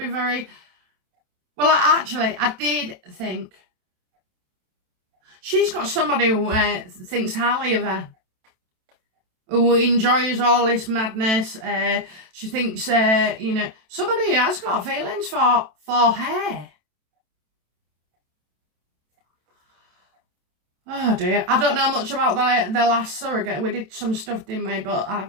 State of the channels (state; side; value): late; left; 27 ms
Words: very, well, I did think, she's got somebody who thinks highly of her, who enjoys all this madness. She thinks, you know, somebody has got feelings for her. Oh dear, I don't know much about the last surrogate. We did some stuff, didn't we? But I